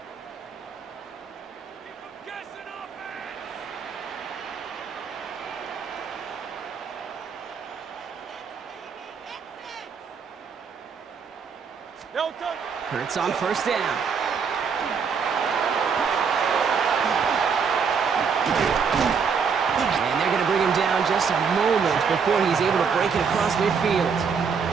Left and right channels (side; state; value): left; quieter; 6.0 dB